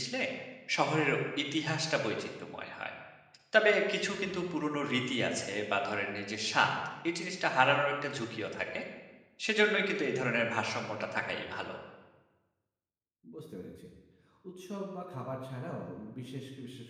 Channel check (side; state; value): both; identical; correlation 1.00